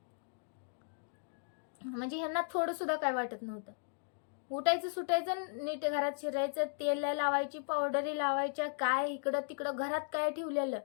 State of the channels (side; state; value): right; silent; digital silence